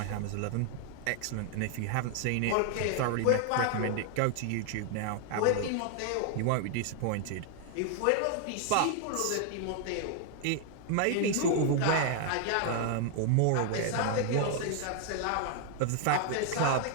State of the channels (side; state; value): both; different; correlation 0.00